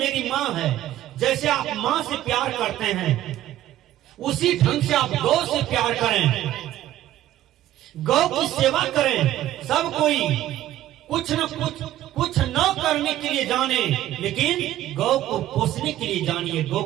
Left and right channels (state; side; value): quieter; left; 13.4 dB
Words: माँ है, जैसे आप माँ से प्यार करते हैं उसी ढंग से आप गौ से प्यार करें, गौ की सेवा करें। सब कोई कुछ न करने के लिए जाने, लेकिन गौ को पोसने के लिए जानिए, गौ